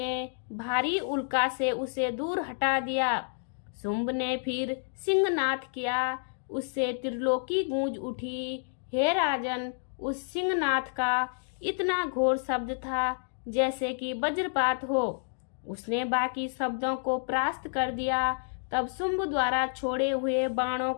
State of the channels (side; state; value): right; silent; digital silence